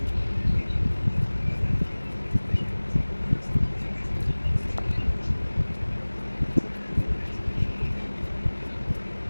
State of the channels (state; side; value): inverted; both; correlation -1.00